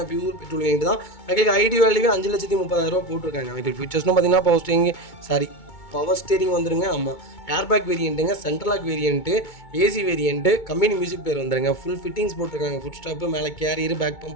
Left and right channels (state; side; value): late; right; 2.2 ms